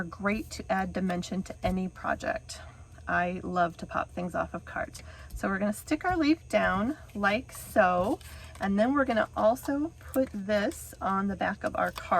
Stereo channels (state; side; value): identical; both; correlation 1.00